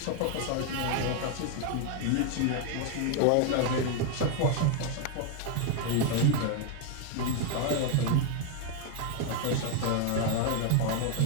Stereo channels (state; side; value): different; both; correlation 0.01